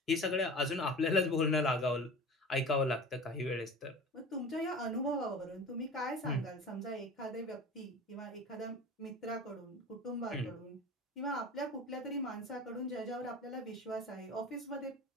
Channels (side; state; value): both; normal; correlation 0.35